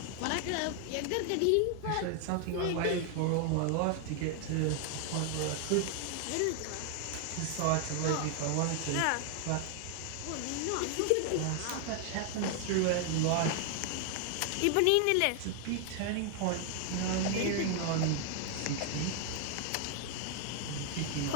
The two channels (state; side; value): different; both; correlation 0.00